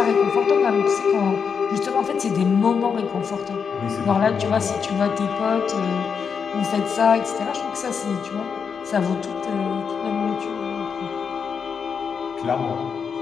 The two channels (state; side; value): quieter; right; 6.3 dB